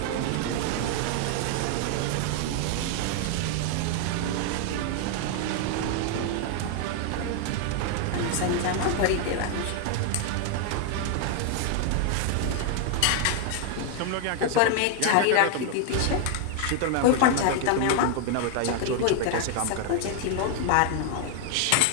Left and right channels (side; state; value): both; different; correlation 0.00